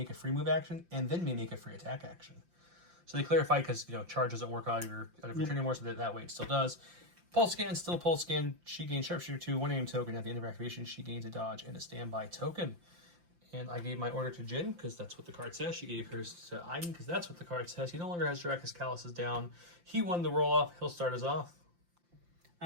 a free move action and then may make a free attack action. So they clarify because charge doesn't work out of your turn anymore, so that way it still does. Pulse scan, still pulse scan. She gains sharpshooter 2, 1 aim token. At the end of activation, she gains a dodge and a standby token. And I gave my order to Jin because that's what the card says. She gave hers to Iden because that's what the card says. He no longer has direct because Kallus is down. He won the roll off. He'll start us off.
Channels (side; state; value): left; late; 5.8 ms